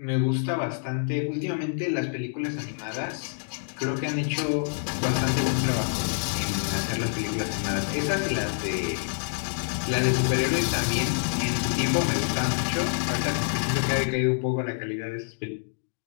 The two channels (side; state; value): right; silent; digital silence